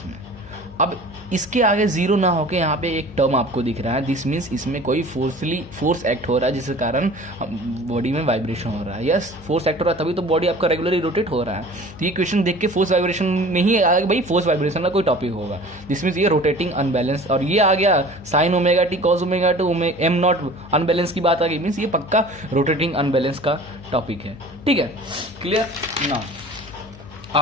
अब इसके आगे 0 ना होके यहाँ पे एक टर्म आपको दिख रहा है, दिस मीन्स इसमें कोई फोर्स एक्ट हो रहा है जिसके कारण बॉडी में वाइब्रेशन हो रहा है। यस, फोर्स एक्ट हो रहा है तभी तो बॉडी आपका रेगुलरली रोटेट हो रहा है। तो ये क्वेश्चन देख के फोर्स वाइब्रेशन में ही आएगा, भाई फोर्स वाइब्रेशन का कोई टॉपिक होगा, दिस मीन्स ये रोटेटिंग अनबैलेंस, और ये आ गया sine omega t cos omega two M naught unbalance की बात आ गई, मीन्स ये पक्का रोटेटिंग अनबैलेंस का टॉपिक है, ठीक है, क्लियर। नाउ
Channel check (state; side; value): noise; left; hum, 19 dB below the sound